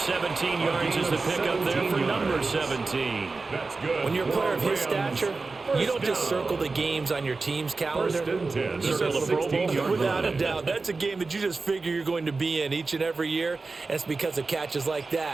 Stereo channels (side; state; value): left; quieter; 3.9 dB